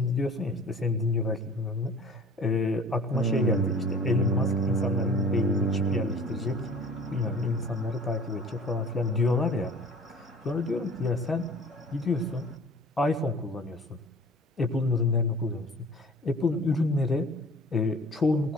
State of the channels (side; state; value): both; normal; correlation 0.45